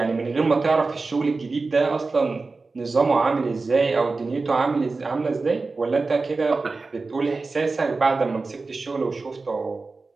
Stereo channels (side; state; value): left; quieter; 3.8 dB